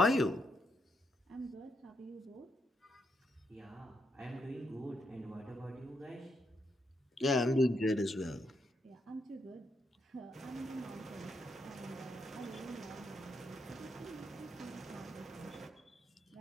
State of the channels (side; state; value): both; normal; correlation 0.79